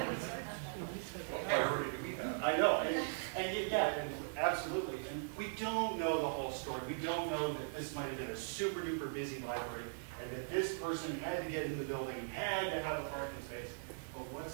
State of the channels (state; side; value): silent; left; digital silence